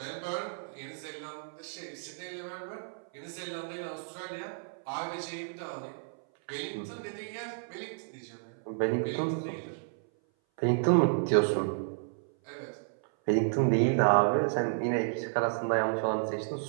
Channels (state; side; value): silent; left; 57 dB below the other